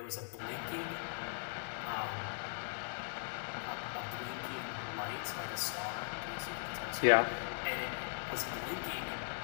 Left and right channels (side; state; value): right; silent; digital silence